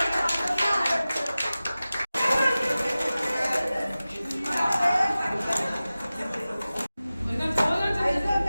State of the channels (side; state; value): both; inverted; correlation -0.96